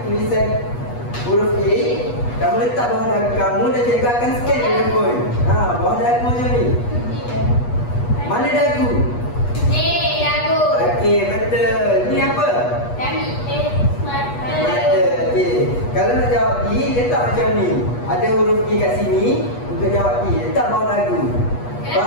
tulisan huruf A, kamu letak bawah dagu kamu dan cikgu akan scan telefon. Bawah dagu macam ni. Mana dagu? Ni dagu. Okey, betul. Ni apa? Kami mata. Mata. Okey. Kalau nak jawab D, letak macam ni. Ada huruf D kat sini. Untuk jawab D, letak bawah dagu.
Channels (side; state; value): right; late; 8.3 ms